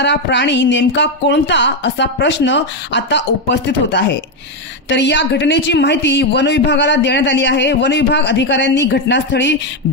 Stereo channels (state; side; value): normal; both; correlation 0.06